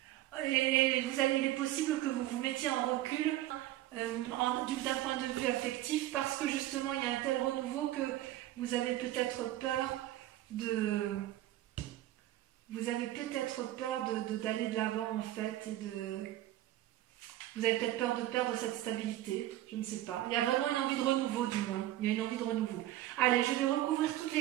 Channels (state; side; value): quieter; left; 14.6 dB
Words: Et il est possible que vous vous mettiez en recul d'un point de vue affectif parce que justement il y a un tel renouveau que vous avez peut-être peur d'aller de l'avant en fait vous avez peut-être peur de perdre cette stabilité, je ne sais pas. Il y a vraiment une envie de renouveau du moins, il y a une envie de renouveau. Allez, je vais recouvrir toutes